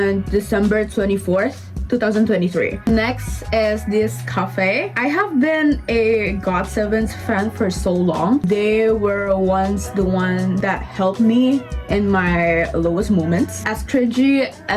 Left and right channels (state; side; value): identical; both; correlation 1.00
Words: December 24th. 2023. Next is this cafe. I have been a GOT7's fan for so long. They were once the one that helped me in my lowest moments. As cringy,